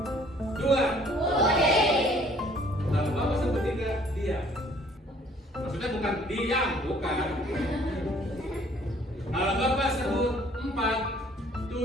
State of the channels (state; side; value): normal; both; correlation 0.58